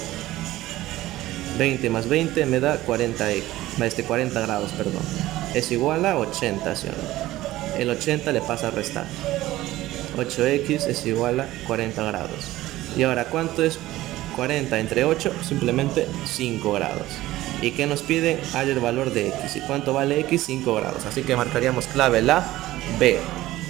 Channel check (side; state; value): left; quieter; 16.3 dB